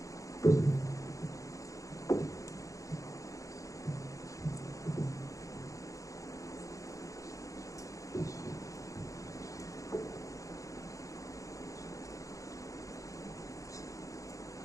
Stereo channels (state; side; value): late; right; 0.16 ms